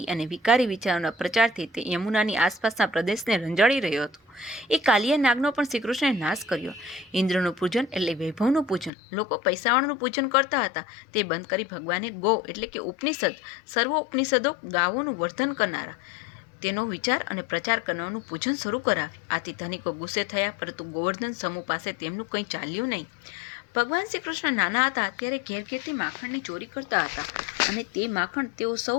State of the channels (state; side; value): drops out; right; at 8.9 s